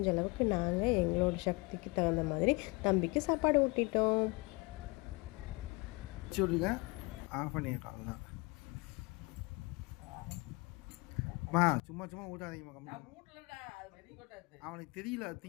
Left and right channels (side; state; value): right; quieter; 25.8 dB